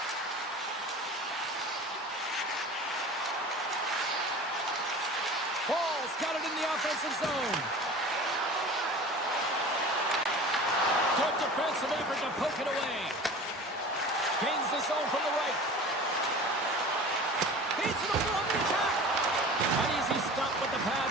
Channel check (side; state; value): both; normal; correlation 0.38